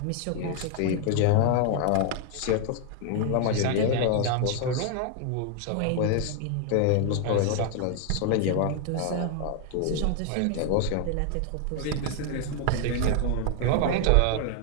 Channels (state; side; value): different; both; correlation 0.00